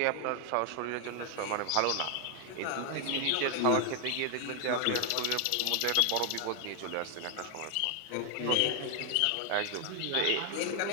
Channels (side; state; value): both; different; correlation 0.00